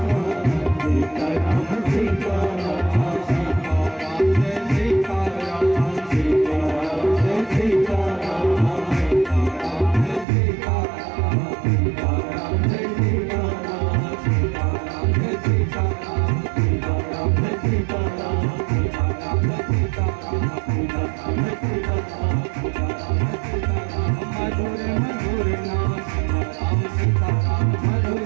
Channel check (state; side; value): drops out; left; at 10.2 s